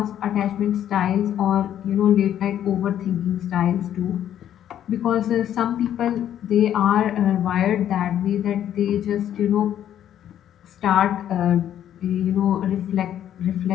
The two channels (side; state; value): right; quieter; 10.7 dB